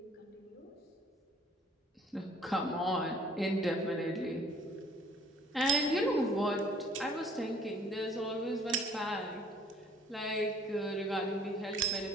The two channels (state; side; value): normal; both; correlation 0.57